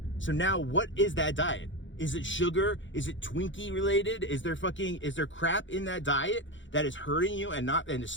So now what is that diet? Is it sugar? Is it Twinkie related? Is there crap in that diet that is hurting you and is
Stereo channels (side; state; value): right; late; 0.55 ms